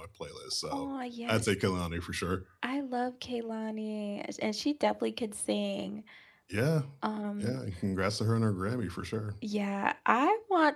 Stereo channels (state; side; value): identical; both; correlation 1.00